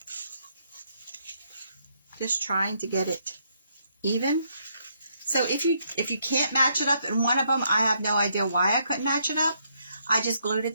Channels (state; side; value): inverted; both; correlation -0.74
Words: Just trying to get it even. So if you can't match it up in one of them, I have no idea why I couldn't match it up. I just glued it